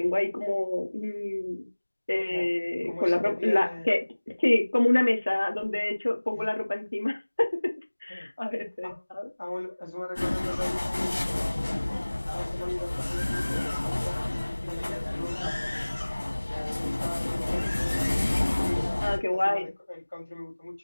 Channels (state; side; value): inverted; both; correlation -1.00